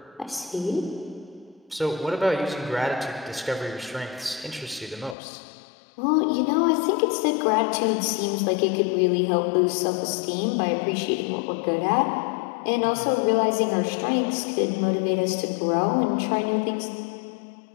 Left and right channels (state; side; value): drops out; right; at 5.2 s